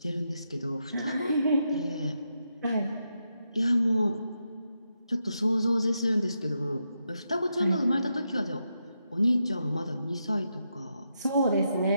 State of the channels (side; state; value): both; inverted; correlation -0.84